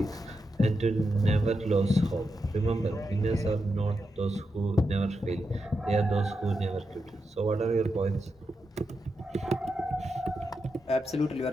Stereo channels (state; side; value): normal; both; correlation 0.87